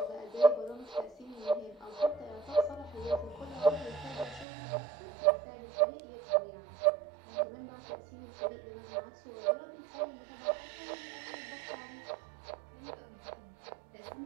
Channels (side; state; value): left; drops out; at 4.5 s